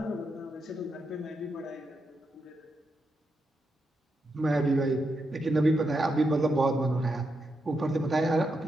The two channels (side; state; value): both; normal; correlation 0.84